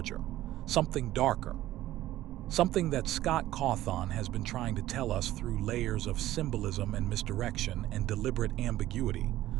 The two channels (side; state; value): left; quieter; 14.7 dB